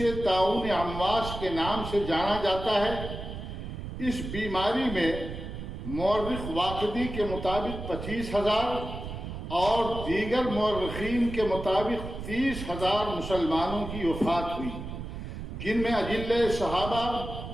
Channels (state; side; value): noise; right; rumble, 8 dB below the sound